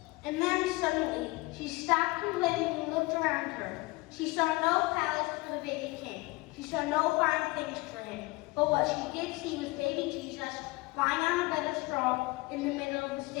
And then suddenly, she stopped complaining and looked around her. She saw no palace for the baby king. She saw no fine things for him. But what she did see was baby Jesus lying on a bed of straw in the middle of the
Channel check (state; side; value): quieter; right; 23.3 dB